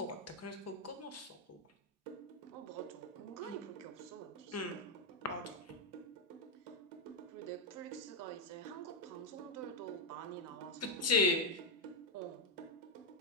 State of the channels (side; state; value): both; normal; correlation 0.01